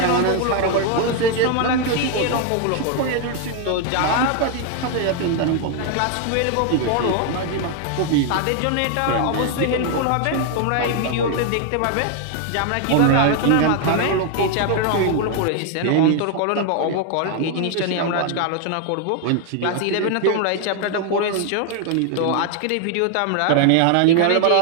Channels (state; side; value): different; both; correlation 0.00